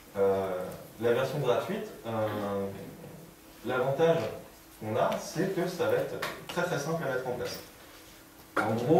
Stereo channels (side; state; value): both; identical; correlation 1.00